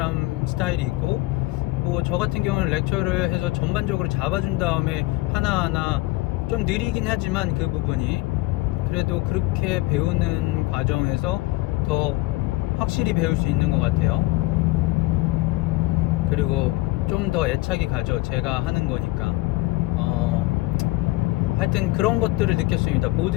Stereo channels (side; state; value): right; quieter; 20.4 dB